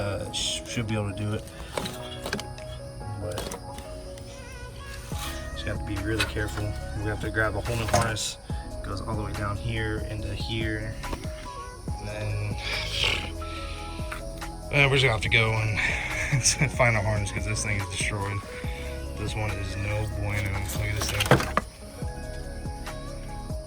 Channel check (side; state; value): both; identical; correlation 1.00